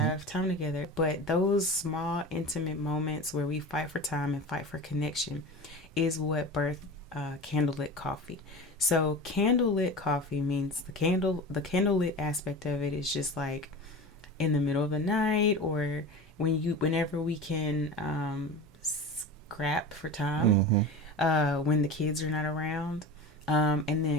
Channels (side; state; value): both; normal; correlation 0.30